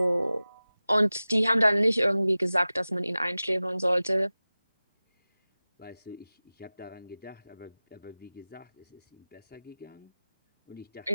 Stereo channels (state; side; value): inverted; both; correlation -0.97